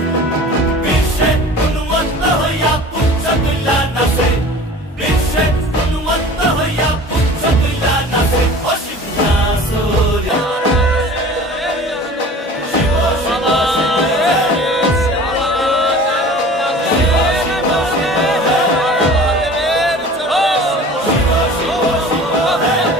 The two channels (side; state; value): both; normal; correlation 0.42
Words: বিশ্বে উন্মত্ত হইয়া পুচ্ছ তুল্লা নাচে, বিশ্বে উন্মত্ত হইয়া পুচ্ছ তুল্লা নাচে।